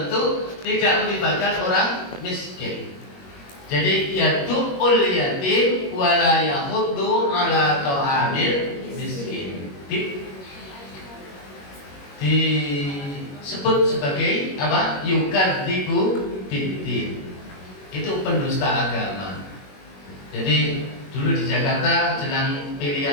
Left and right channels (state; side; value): late; right; 21 ms